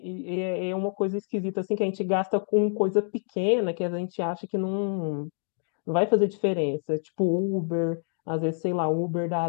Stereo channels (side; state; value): right; silent; 60 dB below the other